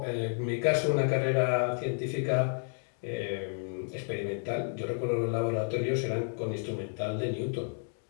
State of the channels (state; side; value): silent; right; 57 dB below the other